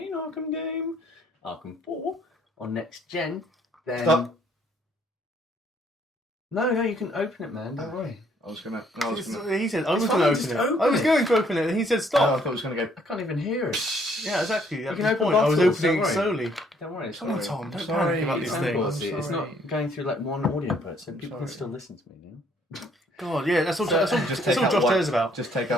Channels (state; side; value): normal; both; correlation 0.65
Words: Arkham game, Arkham 4, on next gen. Then... Stop. No, you can open it, man, don't worry. He said, I was going to open it. I was going to open it, and he said, stop. I thought it was going to go... I can't even hear it. Yeah, exactly. That's can the open point. I was bottles, opening it don't slowly. Don't worry. Come on, Tom. Don't sorry. panic about these things. It's not going through like one audio put, so people can still listen to me now. God, yeah, that's all Josh out cares about. Just take